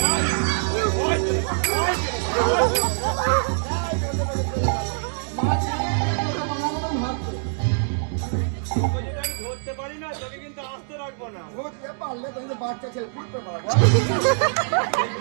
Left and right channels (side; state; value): left; silent; digital silence